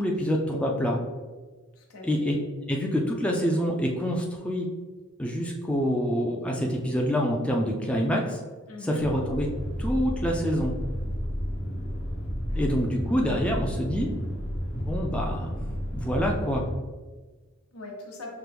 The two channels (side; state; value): both; normal; correlation 0.75